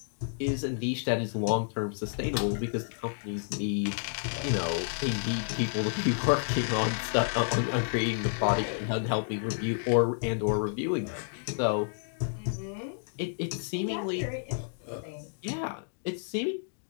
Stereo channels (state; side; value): silent; right; digital silence